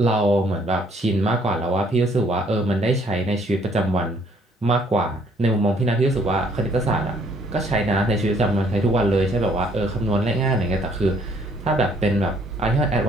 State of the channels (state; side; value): normal; both; correlation 0.63